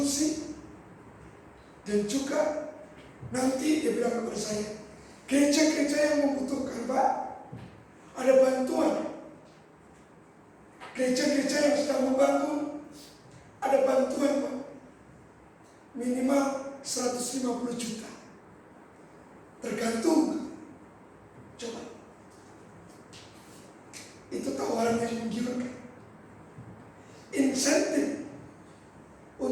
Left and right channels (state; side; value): identical; both; correlation 1.00